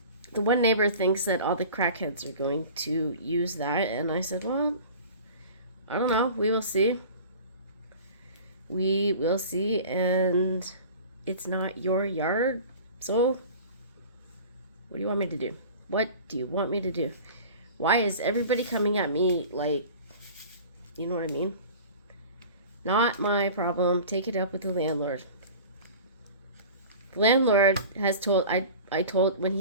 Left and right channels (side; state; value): both; inverted; correlation -0.40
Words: The one neighbor thinks that all the crackheads are going to use that, and I said, well, I don't know. We will see. We will see, and it's not your yard, so what do you want me to do? What do you want me to do? Why is everybody coming at me like, you know what I mean? Not my problem. Take it up with the landlord. The landlord has told, I told, when